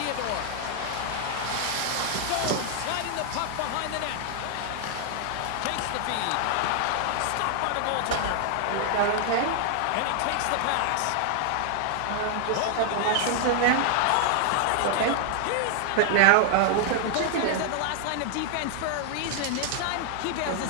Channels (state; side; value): different; both; correlation 0.00